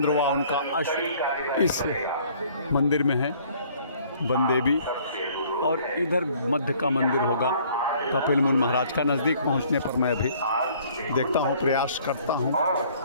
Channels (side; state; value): both; inverted; correlation -0.57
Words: व उनका अश्व इस मंदिर में है, वनदेवी। और इधर मध्य का मंदिर होगा कपिल मुनि महाराज का। नज़दीक पहुंचने पर मैं भी देखता हूं, प्रयास करता हूं